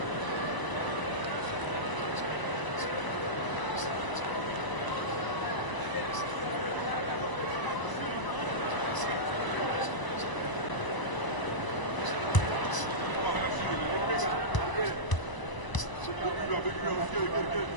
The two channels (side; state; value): right; late; 1.0 ms